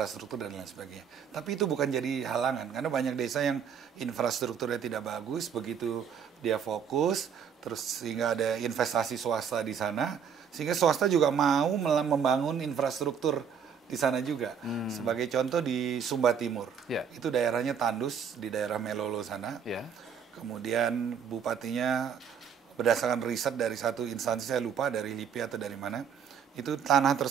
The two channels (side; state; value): left; quieter; 7.3 dB